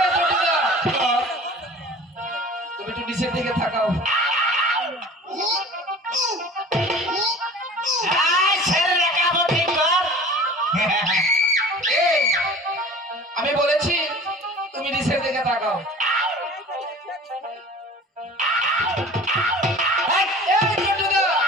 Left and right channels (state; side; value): normal; both; correlation 0.42